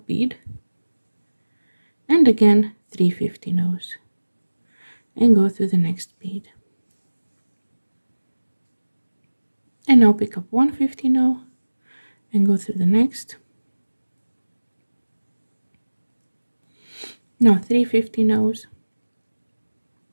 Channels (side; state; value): both; inverted; correlation -1.00